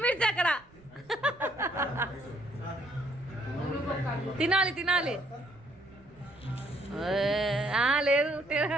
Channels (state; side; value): noise; right; rumble, 27 dB below the sound